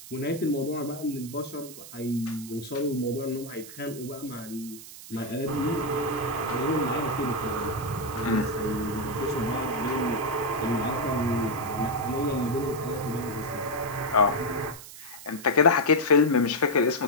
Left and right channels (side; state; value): right; noise; hiss, 15 dB below the sound